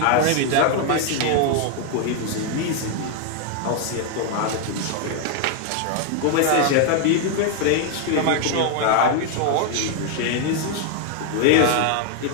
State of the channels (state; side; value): different; both; correlation 0.00